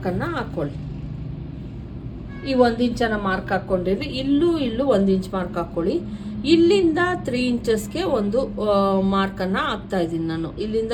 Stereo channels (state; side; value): identical; both; correlation 1.00